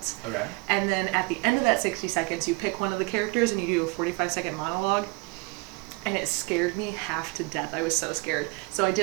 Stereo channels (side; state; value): left; quieter; 27.3 dB